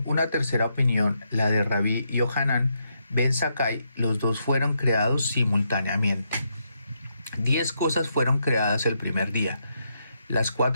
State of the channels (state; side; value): inverted; both; correlation -0.80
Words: una tercera opinión, la de Rabí Yohanan ben Zakkai, los dos fueron creados simultáneamente. 10 cosas fueron creadas el primer día. Las